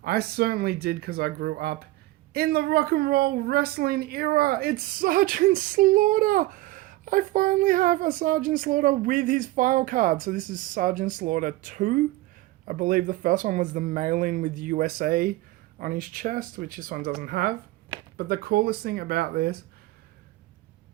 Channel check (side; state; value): left; quieter; 18.2 dB